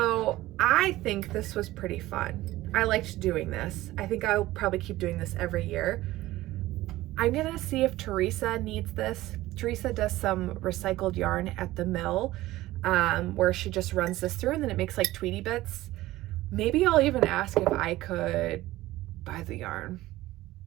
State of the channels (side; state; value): left; quieter; 16.9 dB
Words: I think this was pretty fun. I liked doing this. I think I'll probably keep doing this every year. I'm gonna see if Teresa needs this. Teresa does some recycled yarn at the mill where she just runs this through and then it makes like Tweety bits. Maybe I'll even ask if I could buy the yarn